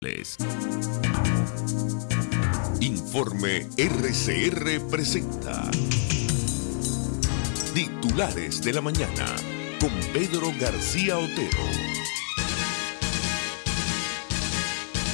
titulares. Informe RCR presenta Titulares de la Mañana con Pedro García Otero.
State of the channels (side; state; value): right; silent; digital silence